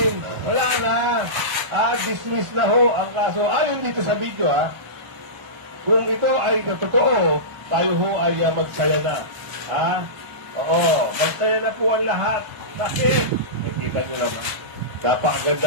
Wala na. Dismiss na ho ang kaso. Ayon dito sa video kung ito ay totoo, tayo ho ay magsaya na. Oo. Magsaya na po ang lahat. Bakit? Kita nyo naman.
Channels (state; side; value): late; left; 1.0 ms